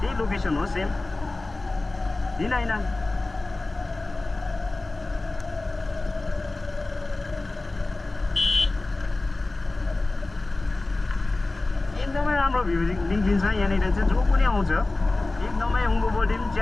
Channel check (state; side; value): quieter; right; 3.1 dB